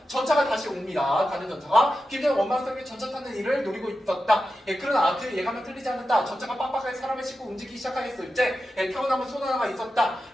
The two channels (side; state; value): both; normal; correlation 0.91